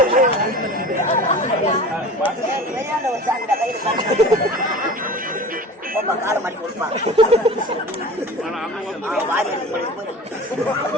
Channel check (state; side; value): normal; both; correlation 0.37